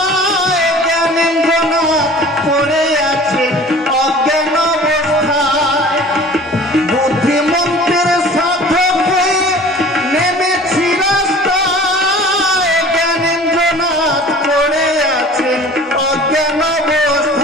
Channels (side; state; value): both; normal; correlation 0.44